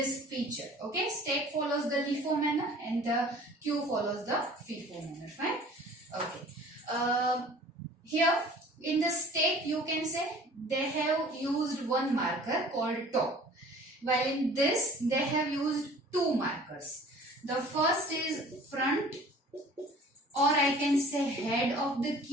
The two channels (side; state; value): both; normal; correlation 0.48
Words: feature. Okay, stack follows the LIFO manner and the queue follows the FIFO manner. Fine. Okay. Here in the stack, you can say they have used one marker called top, while in this they have used 2 markers. The first is front, or I can say head of the